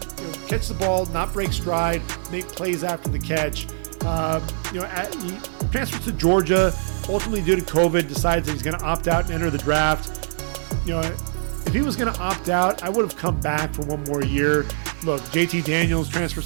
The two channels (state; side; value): silent; left; 63 dB below the other